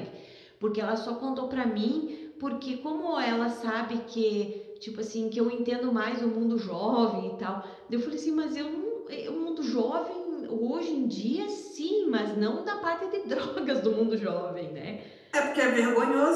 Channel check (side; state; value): both; identical; correlation 1.00